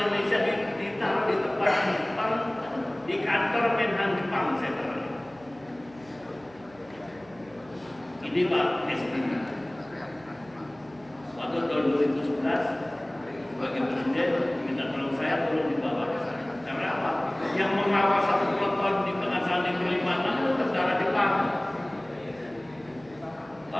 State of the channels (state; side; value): noise; right; hum, 25 dB below the sound